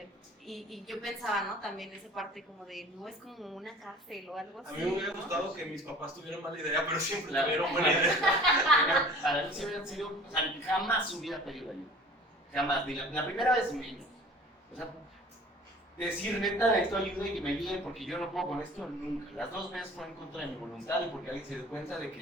Y yo pensaba, ¿no? También esa parte como de, no es como una cárcel o algo así. A mí me hubiera gustado que mis papás tuvieran mala idea, pero siempre tuvieron buena buena idea. Para mí sí hubieran sido, o sea, jamás hubiera pedido ayuda. Jamás. Ni la primera vez menos. O sea, decir neta necesito ayuda y que me ayuden porque yo no puedo con esto, nunca. Las dos veces fue en contra de mi voluntad y porque alguien se dio cuenta de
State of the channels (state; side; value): normal; both; correlation 0.46